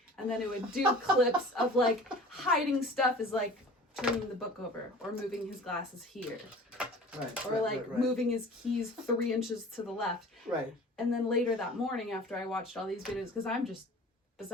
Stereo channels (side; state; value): both; normal; correlation 0.43